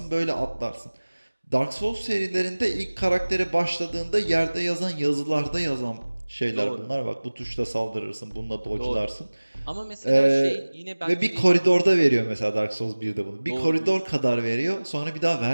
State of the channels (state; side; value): inverted; both; correlation -1.00